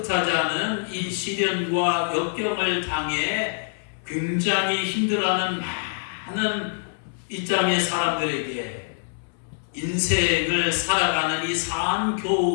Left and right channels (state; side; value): silent; right; 62 dB below the other